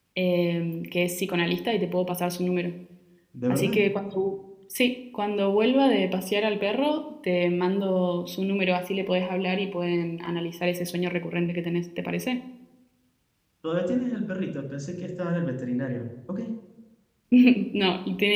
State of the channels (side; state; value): both; identical; correlation 1.00